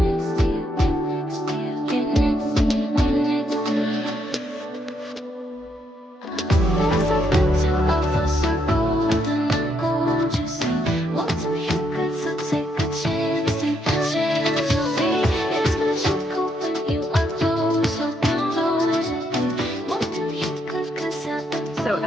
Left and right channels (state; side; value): normal; both; correlation 0.76